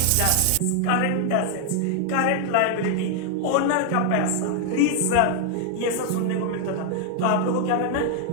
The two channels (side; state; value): both; different; correlation 0.00